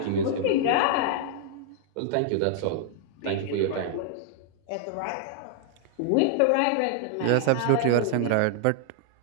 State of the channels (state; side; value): different; both; correlation -0.01